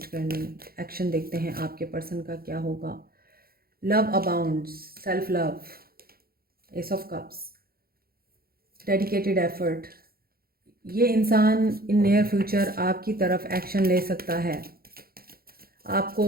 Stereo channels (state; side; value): late; left; 0.44 ms